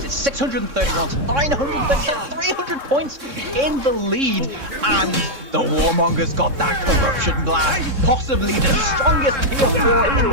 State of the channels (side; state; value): left; late; 3.6 ms